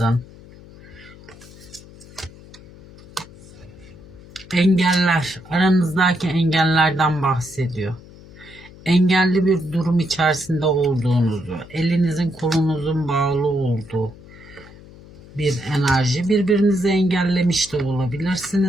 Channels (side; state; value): left; noise; hum, 20 dB below the sound